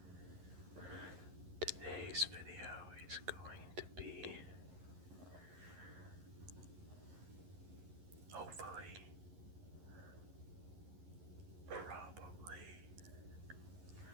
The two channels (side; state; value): left; late; 11 ms